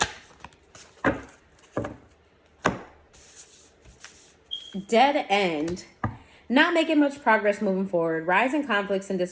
Dead end. Not making much progress moving forward. Rising conflicts and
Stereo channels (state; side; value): identical; both; correlation 1.00